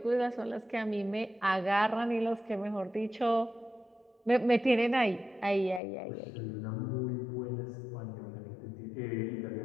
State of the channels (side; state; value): right; drops out; at 5.8 s